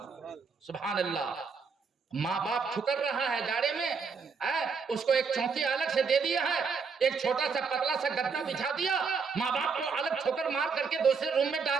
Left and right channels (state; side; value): quieter; left; 5.3 dB